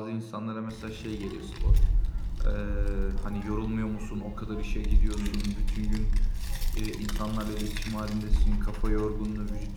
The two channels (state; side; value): identical; both; correlation 1.00